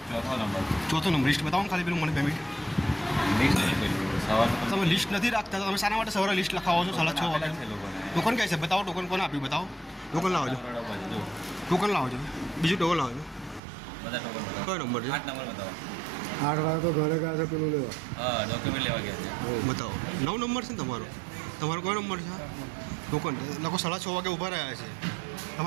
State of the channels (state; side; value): drops out; left; at 13.6 s